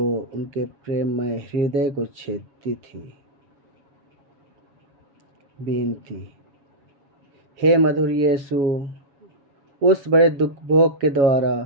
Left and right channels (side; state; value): left; late; 7.2 ms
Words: उनके प्रेममय हृदय को छेदती थी। बेनती। हे मधुर यीशु, उस बड़े दुख भोग के